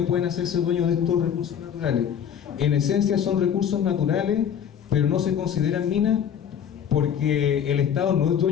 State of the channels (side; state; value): right; quieter; 8.6 dB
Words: pueden hacerse dueños de estos recursos naturales. En esencia son recursos naturales, pero no se consideran minas, porque el Estado no es